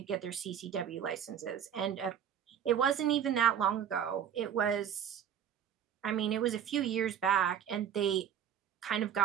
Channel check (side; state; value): left; quieter; 9.0 dB